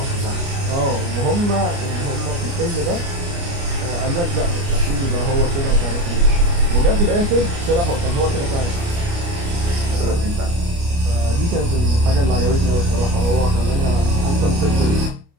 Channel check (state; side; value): late; left; 29 ms